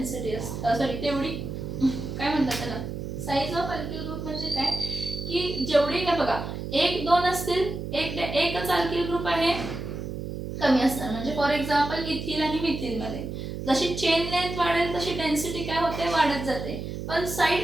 असते. सॉरी, तेवढी काय म्हणतात त्याला? साइज ऑफ अल्किल ग्रुप म्हणजे काय की जेवढी काय बघा 1 2 असतील, एकच अल्किल ग्रुप आहे कमी असणार. म्हणजे फॉर एक्झाम्पल इथिल आणि मिथिल मध्ये जशी चेन लेंथ वाढेल तशी डेन्सिटी काय होते? वाढत जाते. पण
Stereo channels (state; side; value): noise; right; hum, 6 dB below the sound